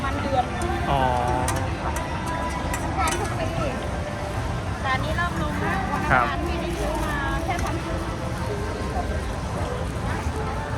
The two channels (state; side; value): identical; both; correlation 1.00